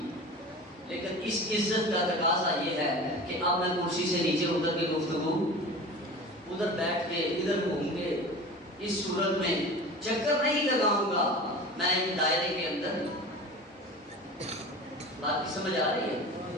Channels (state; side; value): normal; both; correlation 0.35